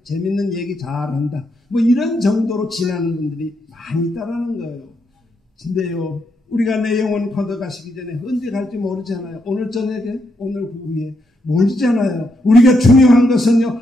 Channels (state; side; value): normal; both; correlation 0.80